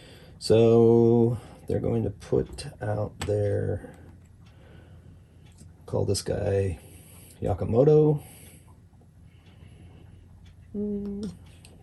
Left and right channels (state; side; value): identical; both; correlation 1.00